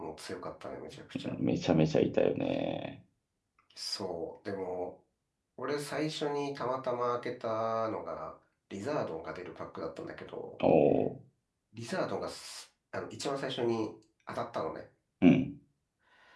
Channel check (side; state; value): both; identical; correlation 1.00